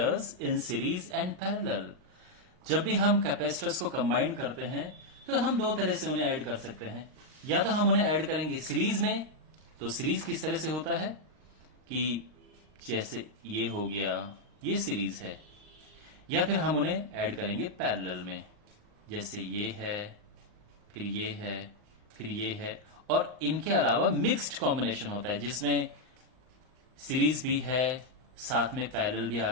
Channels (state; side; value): late; left; 39 ms